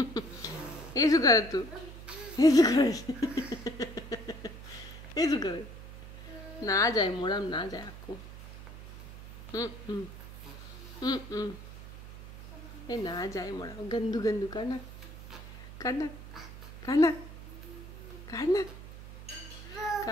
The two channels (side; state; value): right; noise; hum, 14 dB below the sound